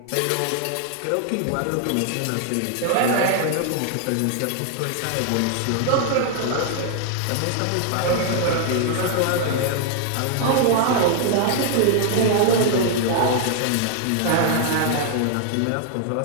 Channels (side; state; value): both; different; correlation 0.00